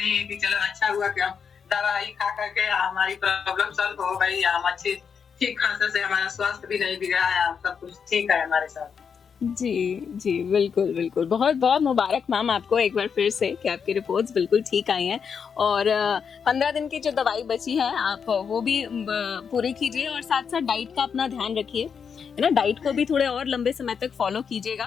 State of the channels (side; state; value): right; quieter; 6.6 dB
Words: है कि चलो अच्छा हुआ कि हम दवाई खा करके हमारी प्रॉब्लम सॉल्व हो गई, हम अच्छी ठीक खासा से, हमारा स्वास्थ्य भी नहीं बिगड़ा है, सब कुछ ठीक है हमारे साथ। जी बिल्कुल बिल्कुल, बहुत बहुत मुबारक मैम आपको एक बार फिर से कि आपकी रिपोर्ट्स बिल्कुल ठीक आई हैं। और 15 दिन की जो दवाई बची है आप वो भी पूरी कीजिए और साथ साथ डाइट का अपना ध्यान रखिए, है ना, डाइट को भी थोड़े और लंबे समय तक फॉलो